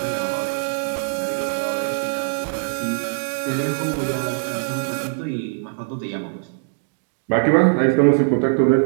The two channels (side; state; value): left; silent; digital silence